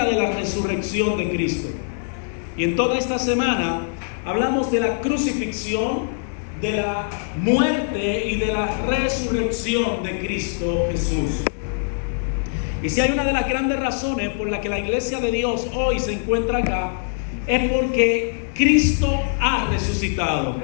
de la resurrección de Cristo. Y en toda esta semana hablamos de la crucifixión, de la muerte y de la resurrección de Cristo Jesús. Y si hay una de las grandes razones por la que la iglesia de Dios hoy se encuentra acá, es porque Cristo ha resucitado.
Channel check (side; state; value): right; silent; digital silence